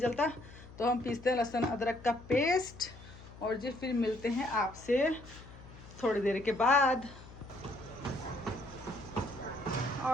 तो हम पीसते हैं लहसुन अदरक का पेस्ट, और जी फिर मिलते हैं आपसे थोड़ी देर के बाद।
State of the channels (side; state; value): left; noise; hum, 18 dB below the sound